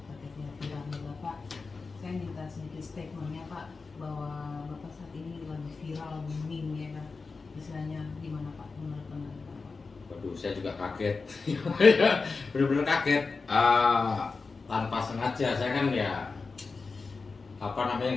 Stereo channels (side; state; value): right; quieter; 4.3 dB